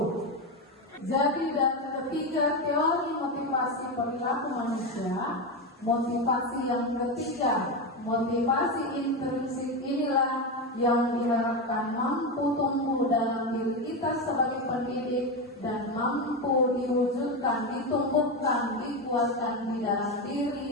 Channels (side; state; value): both; normal; correlation 0.14